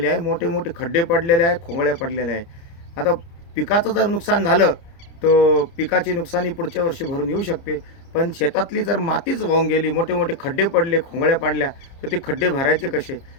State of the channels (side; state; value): right; late; 30 ms